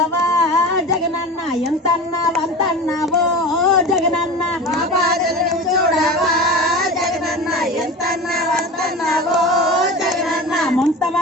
జగనన్న ఎంతన్నావు అంతన్నావో జగనన్న మా బాధలు నువ్వు చూడవా జగనన్న ఎంతన్నావు అంతన్నావో జగనన్న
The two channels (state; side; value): normal; both; correlation 0.31